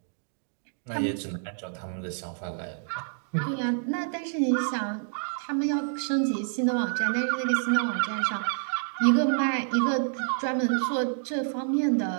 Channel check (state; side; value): silent; left; digital silence